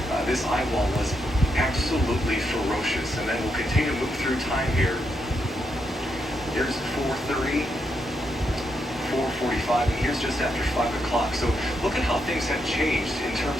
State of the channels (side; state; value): both; normal; correlation 0.81